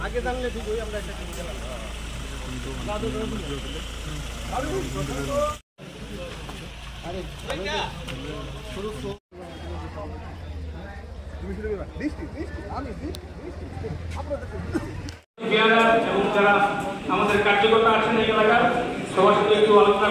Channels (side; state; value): both; identical; correlation 1.00